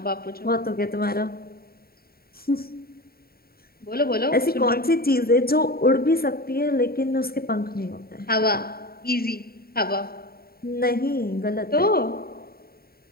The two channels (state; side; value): late; right; 0.44 ms